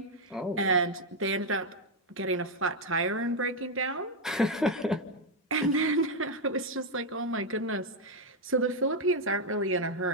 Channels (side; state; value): both; normal; correlation 0.02